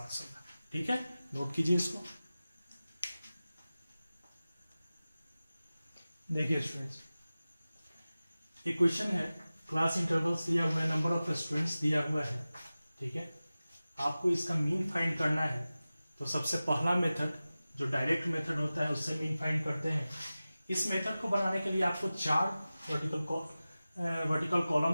होगा, ठीक है। नोट कीजिए इसको। देखिए स्टूडेंट्स, एक क्वेश्चन है, क्लास इंटरवल्स दिया हुआ है, नंबर ऑफ स्टूडेंट्स दिया हुआ है, ठीक है। आपको इसका मीन फाइंड करना है। तो सबसे पहला मेथड जो डायरेक्ट मेथड होता है उससे मीन फाइंड करते हैं। इस मेथड को बनाने के लिए आपको 4 वर्टिकल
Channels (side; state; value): both; inverted; correlation -0.96